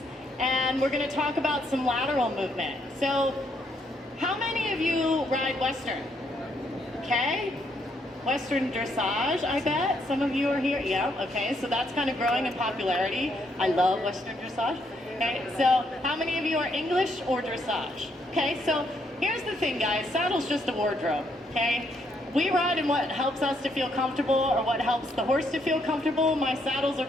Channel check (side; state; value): both; normal; correlation 0.73